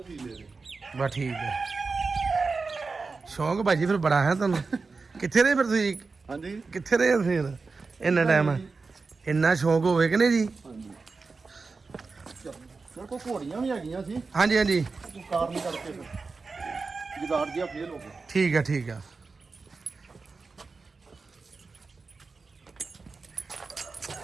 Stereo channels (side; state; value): left; quieter; 4.3 dB